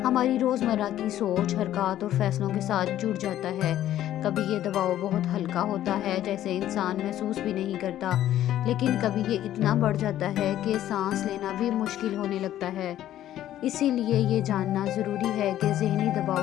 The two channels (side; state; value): right; quieter; 12.5 dB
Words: हमारी रोज़मर्रा की सोच, हरकत और फैसलों के साथ जुड़ जाता है। कभी ये दबाव बहुत हल्का होता है, जैसे इंसान महसूस भी नहीं करता, लेकिन कभी ये इतना बढ़ जाता है कि सांस लेना भी मुश्किल होने लगता है। इसीलिए ये जानना ज़रूरी है कि ज़हनी